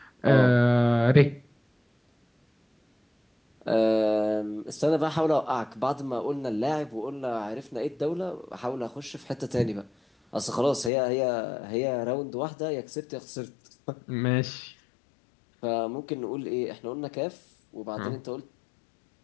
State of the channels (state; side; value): drops out; right; at 10.9 s